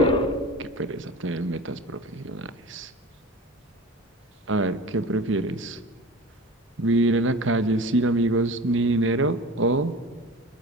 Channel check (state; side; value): normal; both; correlation 0.36